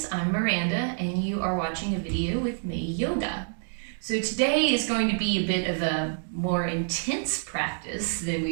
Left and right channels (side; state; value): left; silent; 60 dB below the other